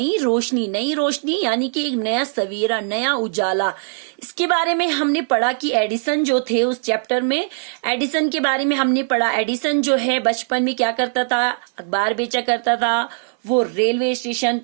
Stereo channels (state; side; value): silent; left; 61 dB below the other